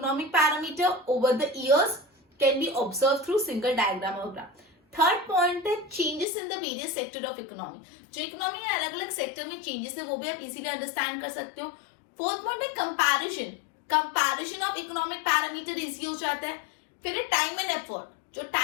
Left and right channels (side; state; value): right; drops out; at 6.2 s